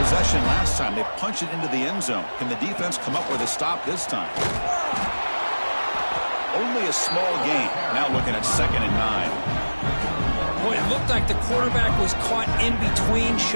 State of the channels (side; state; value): both; inverted; correlation -1.00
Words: possession last time. They punch it into the end zone. Can the defense come up with a stop this time? Only a small gain. Now looking at 2nd and 9. Boy, it looked like the quarterback was caught in between.